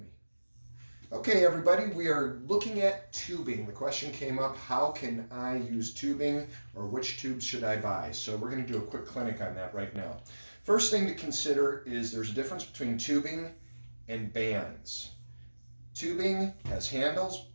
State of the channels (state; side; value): inverted; both; correlation -1.00